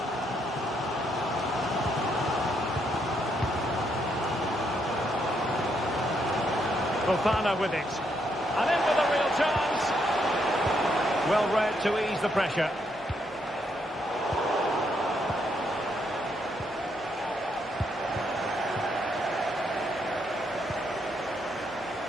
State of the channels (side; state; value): both; normal; correlation 0.76